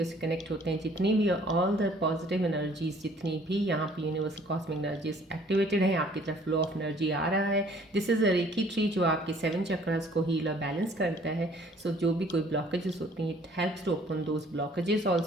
से कनेक्ट होते हैं, जितनी भी ऑल द पॉजिटिव एनर्जीज, जितनी भी यहाँ पे यूनिवर्सल कॉस्मिक एनर्जीज एक्टिवेटेड है, आपकी तरफ फ्लो ऑफ एनर्जी आ रहा है। This is a reiki tree जो आपके 7 चक्रास को हील और बैलेंस करता है। सो जो भी कोई ब्लॉकेजेस होती हैं, it helps to open those blockages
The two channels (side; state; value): both; normal; correlation 0.57